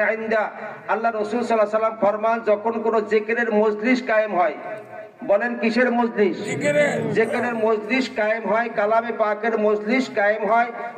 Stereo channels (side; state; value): both; identical; correlation 1.00